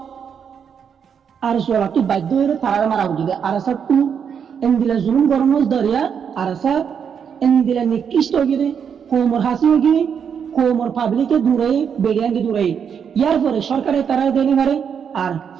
আর সোলা তুই বাধ্য হয়ে তারা মারা উঠিবে আর স্যার তুই এন দিলে জুলুম গরমজ দরিয়া আর স্যার এন দিলে নিকৃষ্ট গিয়ে কোমর হাসি গিয়ে কোমর পাবলিকে দূরে বেড়িয়াঙ্গে দূরে ইয়ার পরে সরকারে তারা দেনি মারে আর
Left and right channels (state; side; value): quieter; left; 7.3 dB